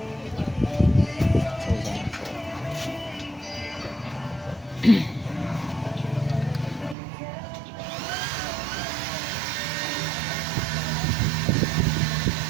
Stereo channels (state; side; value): drops out; left; at 7.0 s